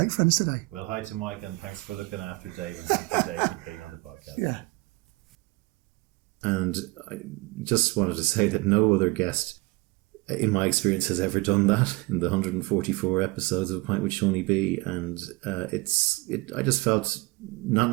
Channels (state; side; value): quieter; left; 24.7 dB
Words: friends today. Well, hi to Mike, and thanks for looking after Dave, and thank you, Dave, for being on the podcast. Yeah. And I just wanted to say that no other guest, in my experience, has ever done that in the 144 episodes of A Pint with Seaniebee. And I just felt,